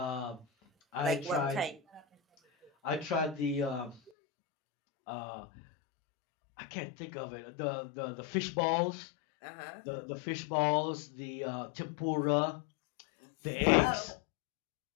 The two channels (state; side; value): drops out; right; at 4.1 s